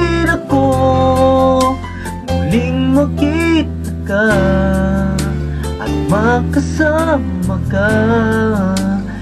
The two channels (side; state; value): both; identical; correlation 1.00